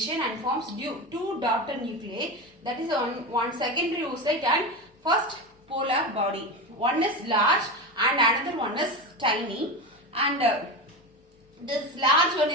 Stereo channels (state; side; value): normal; both; correlation 0.21